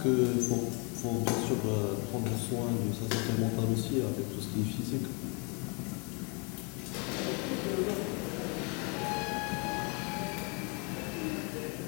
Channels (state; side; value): quieter; right; 33.6 dB